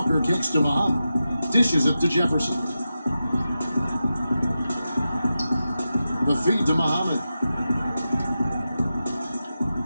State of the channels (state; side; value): inverted; both; correlation -0.91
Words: kicks to Muhammad. Dishes it to Jefferson. The feed to Muhammad.